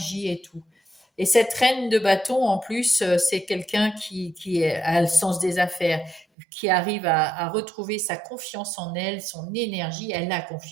et tout. Et cette reine de bâton, en plus, c'est quelqu'un a le sens des affaires, qui arrive à retrouver sa confiance en elle, son énergie. Elle a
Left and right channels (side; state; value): left; drops out; at 6.2 s